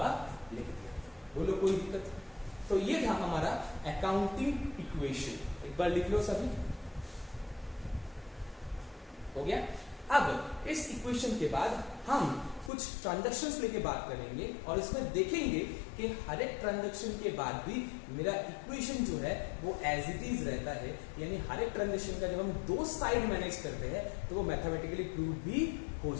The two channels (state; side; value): drops out; right; at 12.7 s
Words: लिख दिया। बोलो कोई दिक्कत? तो ये था हमारा अकाउंटिंग इक्वेशन, एक बार लिख लो सभी, हो गया। अब इस इक्वेशन के बाद हम कुछ ट्रांजैक्शंस लेके बात करेंगे और इसमें देखेंगे कि हर एक ट्रांजैक्शन के बाद भी मेरा इक्वेशन जो है वो एज इट इज रहता है, यानी हर एक ट्रांजैक्शन का जब हम दो साइड मैनेज करते हैं तो वो मैथमेटिकली प्रूव भी हो